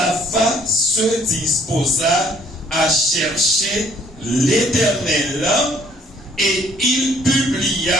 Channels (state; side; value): normal; both; correlation 0.60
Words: se disposa à chercher l'Éternel, et il